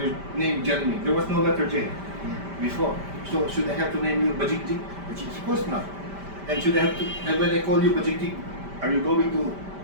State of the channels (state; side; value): late; left; 5.1 ms